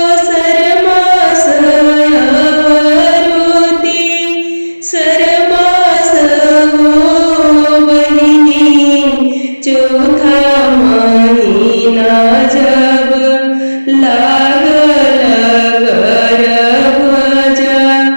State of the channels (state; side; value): inverted; both; correlation -1.00